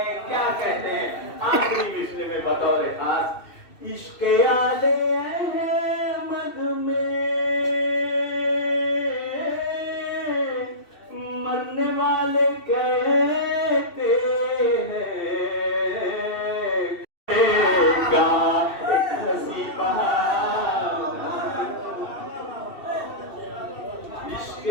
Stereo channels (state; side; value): late; right; 2.7 ms